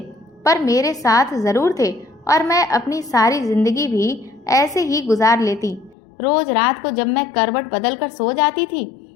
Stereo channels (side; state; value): right; drops out; at 6.0 s